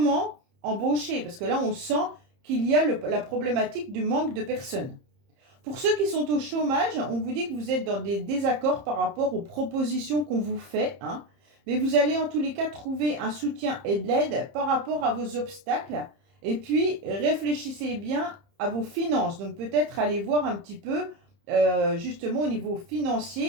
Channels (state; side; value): late; left; 30 ms